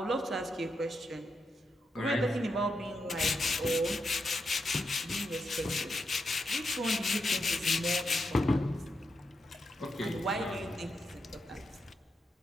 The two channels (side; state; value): both; normal; correlation 0.84